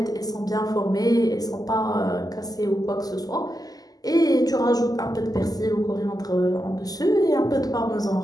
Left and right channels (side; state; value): right; late; 0.18 ms